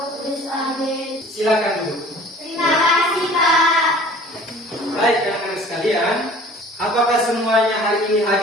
Kudus. Amin. Silakan duduk. Terima kasih, Pak. Baik anak-anak sekalian, apakah semuanya hari ini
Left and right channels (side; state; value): both; normal; correlation 0.48